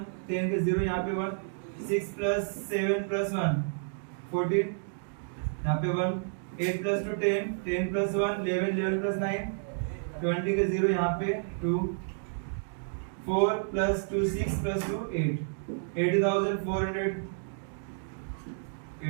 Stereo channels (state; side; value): silent; left; digital silence